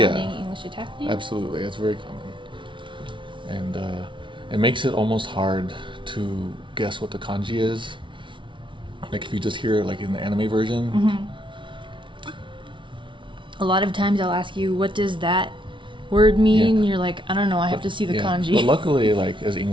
English attack name? Absolutely, that's very common. And it makes it almost hard to guess what the kanji is. Like if you just hear it like in the anime version. Mm-hmm. A lot of times I'll ask you, what does that word mean? You're like, I don't know, I have to see the kanji. But luckily, like as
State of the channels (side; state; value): left; late; 0.24 ms